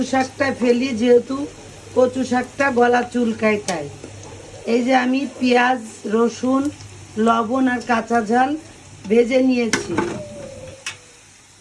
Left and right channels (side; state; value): both; identical; correlation 1.00